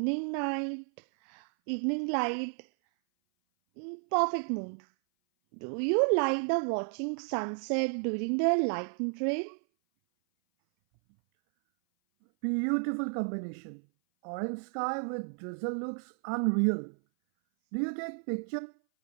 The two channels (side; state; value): left; silent; 57 dB below the other